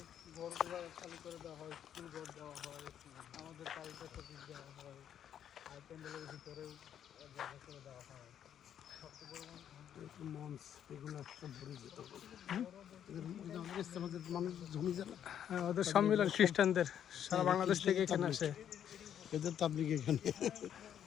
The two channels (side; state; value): right; quieter; 9.6 dB